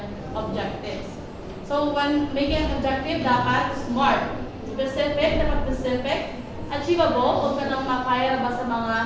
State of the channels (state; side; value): identical; both; correlation 1.00